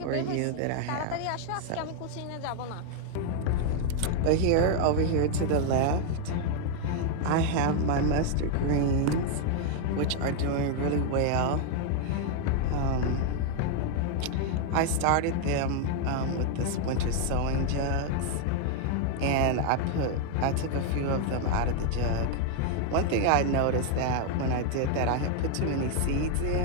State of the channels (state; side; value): different; both; correlation 0.00